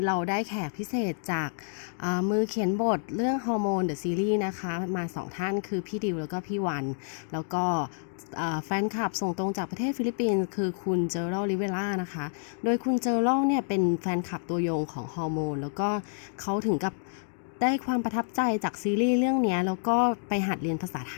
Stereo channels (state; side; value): silent; right; digital silence